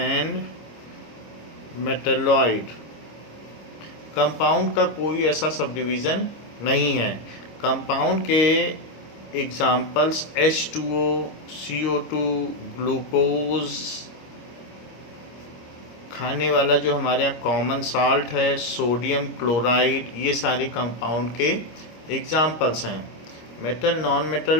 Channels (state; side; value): late; right; 26 ms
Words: metalloid. Compound का कोई ऐसा सब डिवीज़न नहीं है। कंपाउंड के एग्जाम्पल्स H2O, CO2, ग्लूकोज, खाने वाला जो हमारे यहाँ कॉमन साल्ट है, सोडियम क्लोराइड, ये सारे कंपाउंड के एग्जाम्पल्स हैं। मेटल, नॉन